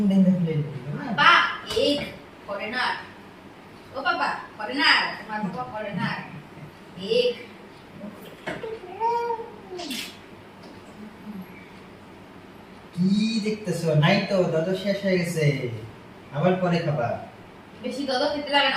দেন দেখলে বা এগ করে না। ও বাবা করে না, তোমার বাবা করে না। এগ কি দেখতেছো নাই তো দাদা শেষ হয়ে গেছে আবার পরে খাবা বেশি দদ খেতে লাগে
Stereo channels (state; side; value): identical; both; correlation 1.00